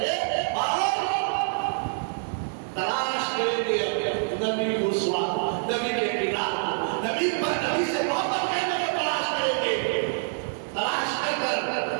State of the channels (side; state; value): left; silent; digital silence